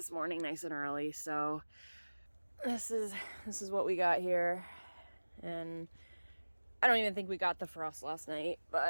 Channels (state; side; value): inverted; both; correlation -1.00